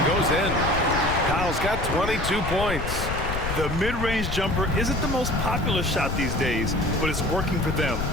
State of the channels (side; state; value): left; noise; rumble, 4 dB below the sound